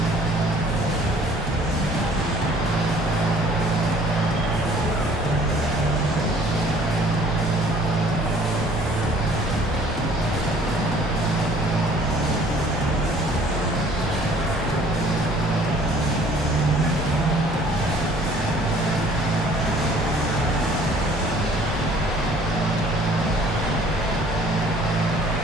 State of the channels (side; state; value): both; normal; correlation 0.55